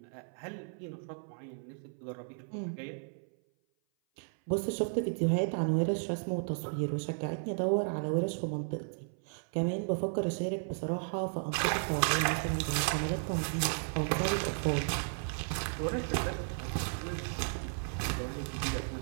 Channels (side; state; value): left; silent; 55 dB below the other